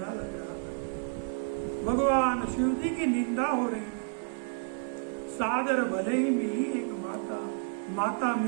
लग रहा था, भगवान शिव जी की निंदा हो रही। सादर भले ही मिली एक माता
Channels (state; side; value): silent; left; 56 dB below the other